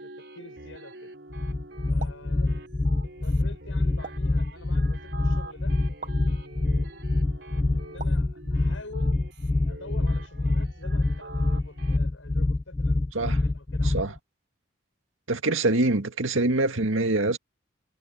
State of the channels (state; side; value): normal; both; correlation 0.74